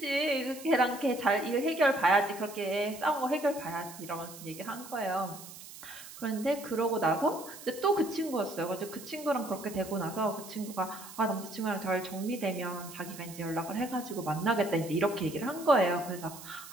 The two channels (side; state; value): right; noise; hiss, 15 dB below the sound